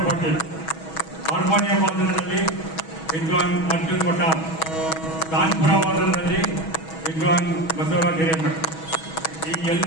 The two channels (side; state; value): right; late; 6.2 ms